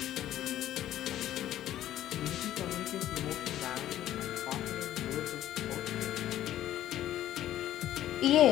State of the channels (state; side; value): quieter; right; 12.8 dB